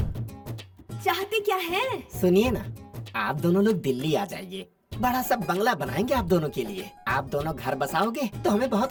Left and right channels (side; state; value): both; identical; correlation 1.00